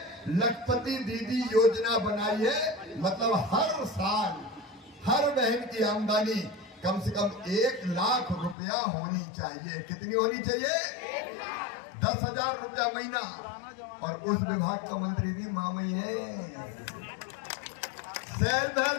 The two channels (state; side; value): drops out; right; at 8.6 s